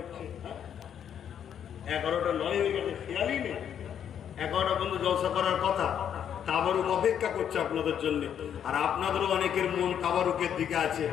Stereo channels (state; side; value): quieter; right; 9.0 dB